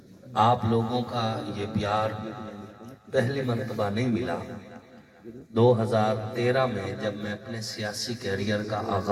آپ لوگوں کا یہ پیار پہلی مرتبہ نہیں ملا۔ 2013 میں جب میں اپنے سیاسی کیریئر کا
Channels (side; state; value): both; identical; correlation 1.00